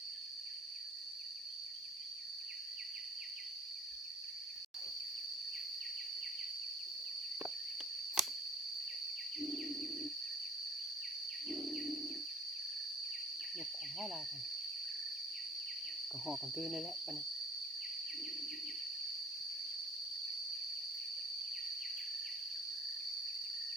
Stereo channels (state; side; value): normal; both; correlation 0.52